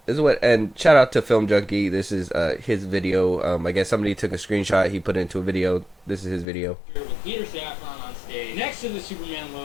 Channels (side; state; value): right; drops out; at 6.5 s